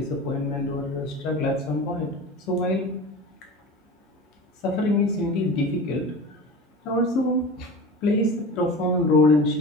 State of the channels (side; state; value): both; normal; correlation 0.33